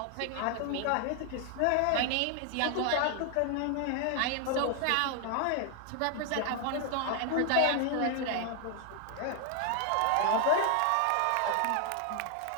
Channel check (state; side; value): different; both; correlation 0.00